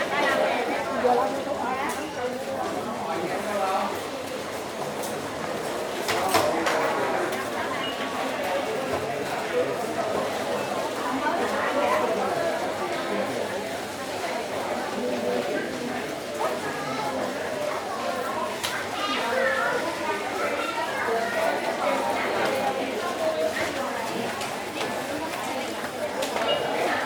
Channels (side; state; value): both; identical; correlation 1.00